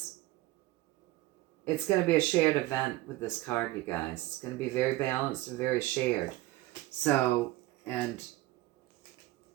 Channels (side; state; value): left; quieter; 17.6 dB